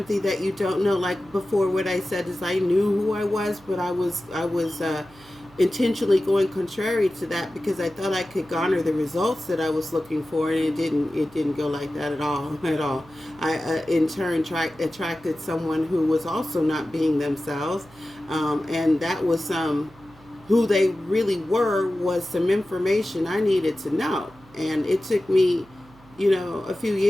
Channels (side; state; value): right; noise; hum, 25 dB below the sound